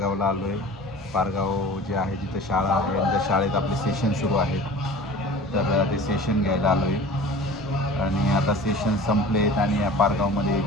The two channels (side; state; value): both; normal; correlation 0.41